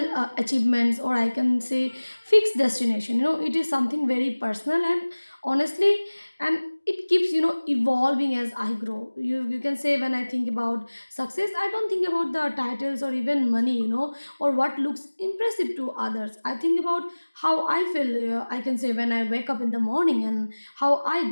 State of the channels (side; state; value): both; inverted; correlation -1.00